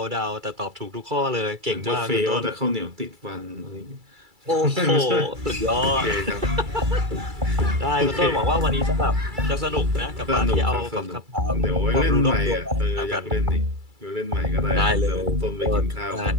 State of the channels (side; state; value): left; late; 2.3 ms